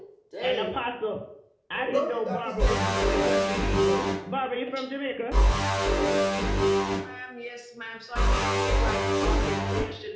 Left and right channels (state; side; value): identical; both; correlation 1.00